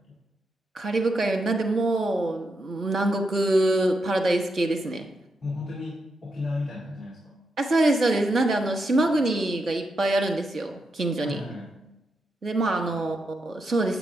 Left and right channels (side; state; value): both; normal; correlation 0.83